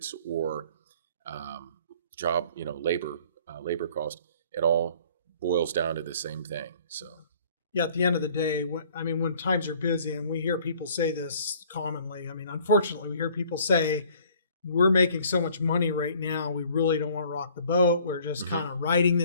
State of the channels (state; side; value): inverted; both; correlation -0.55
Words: or job, labor cost, it all boils down to the same thing. So. Yeah, at the end of the day, when times are busy, and we hear people say this commonly, unfortunately, we hear people say, we're making so much money right now, we really don't want to rock the boat. We're just kind of riding